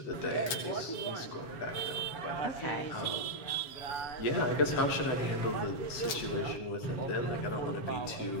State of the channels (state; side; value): late; right; 7.5 ms